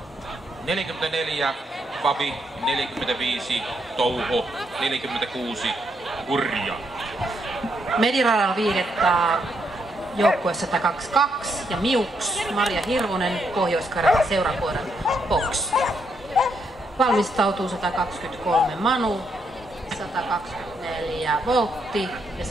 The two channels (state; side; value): normal; both; correlation 0.77